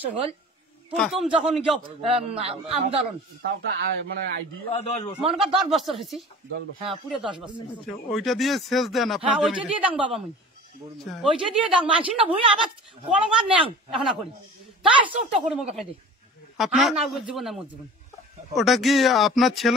হল প্রথম যখন আন্দোলন মনে কর 10 বছর হয়েছি। হ্যাঁ পুরো 10 বছর। আচ্ছা, ওইটা দিয়ে সেচ দেন হ্যাঁ আপনার ওইটা জমিতে? দিয়ে দাং বাবা মুই আচ্ছা। ওইটা দিয়ে দাং মানছি না ভুই আবার কলমার নেও এখন করি তাই চোখটা করে মুখে খাই দিই। আপনার না জীবন না মোর জীবন। ওটা কি আপনার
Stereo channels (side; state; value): both; normal; correlation 0.40